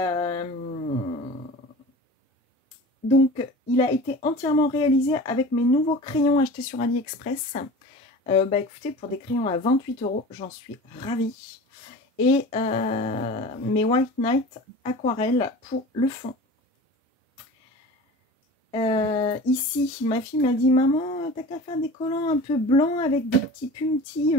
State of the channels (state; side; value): normal; both; correlation 0.37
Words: Donc, il a été entièrement réalisé avec mes nouveaux crayons achetés sur AliExpress. Écoutez, pour des crayons à 28 €, j'en suis ravie. Et mes White Night aquarelles pour le fond. Ici, ma fille m'a dit « Maman, t'as qu'à faire des collants un peu blancs avec des petits puntis